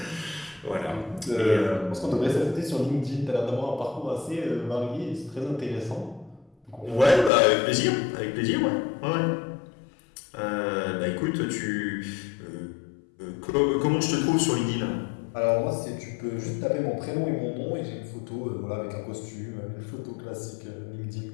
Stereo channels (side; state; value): right; drops out; at 7.3 s